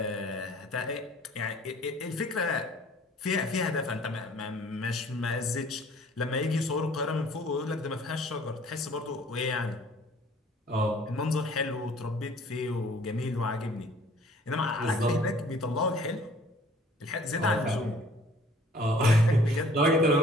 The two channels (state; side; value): normal; both; correlation 0.54